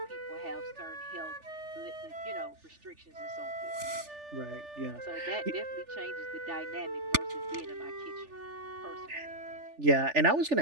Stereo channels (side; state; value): left; late; 3.4 ms